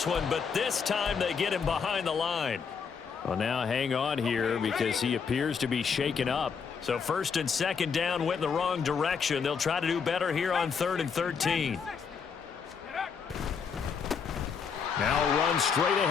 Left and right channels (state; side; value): quieter; right; 6.2 dB